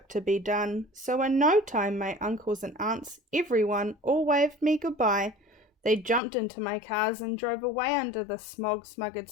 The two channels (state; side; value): drops out; right; at 6.2 s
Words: to be done. So in no time my uncles and aunts, everyone, all waved me goodbye. They jumped into my cars and drove away under the smog-smothered